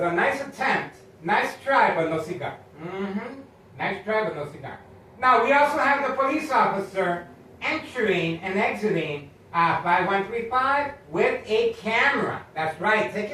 nice attempt, nice try, but no cigar. Nice try, but no cigar. Now, we also have the police officer entering and exiting 5135 with a camera. That's right,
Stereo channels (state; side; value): identical; both; correlation 1.00